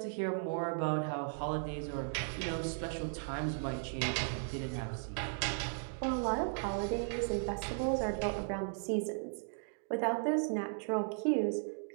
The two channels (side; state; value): left; silent; digital silence